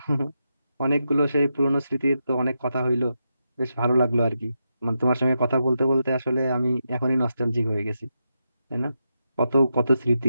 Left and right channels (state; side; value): inverted; both; correlation -0.86